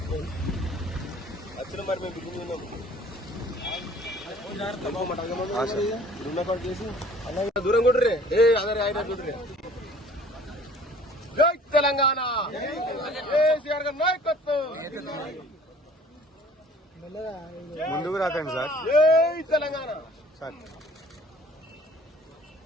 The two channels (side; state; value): both; normal; correlation 0.51